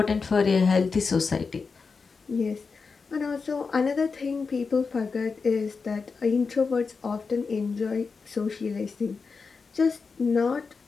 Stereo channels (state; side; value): quieter; right; 4.8 dB